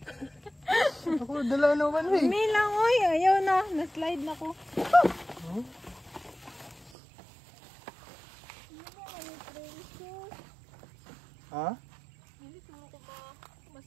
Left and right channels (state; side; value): drops out; left; at 6.9 s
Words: Ako, dala naman eh. May lang, oy. Ayaw na. Na-slide na ko. Ha? Hindi siguro ko ba